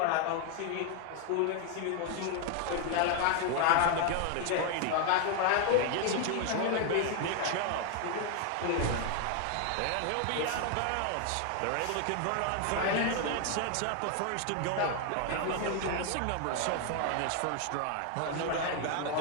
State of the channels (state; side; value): different; both; correlation 0.01